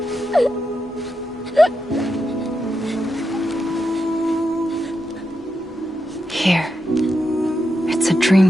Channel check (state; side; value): normal; both; correlation 0.86